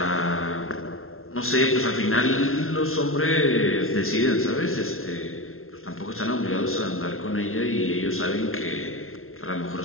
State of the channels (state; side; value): late; right; 0.62 ms